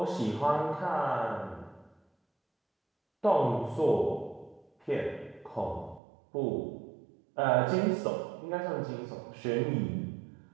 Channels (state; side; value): drops out; left; at 6.0 s